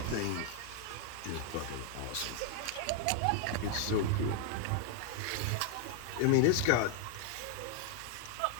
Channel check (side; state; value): both; different; correlation 0.00